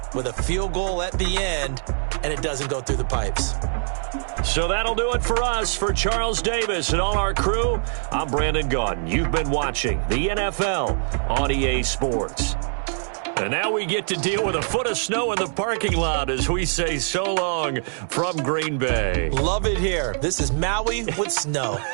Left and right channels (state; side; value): silent; left; digital silence